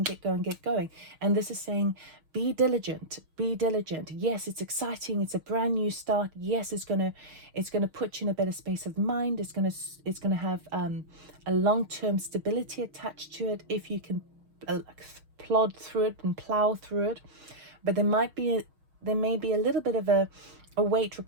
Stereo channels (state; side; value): late; left; 6.4 ms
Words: And this is saying, be diligent. Yes, it's exciting. It's a brand new start. Yes, it's gonna put you in a better space of mind. It's gonna have a long-term stability attached to it if you can plod through it and plow through it. But there may be a little bit of a wait